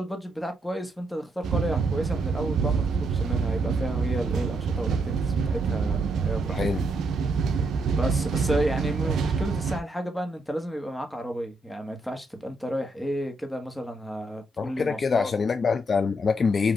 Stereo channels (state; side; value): normal; both; correlation 0.77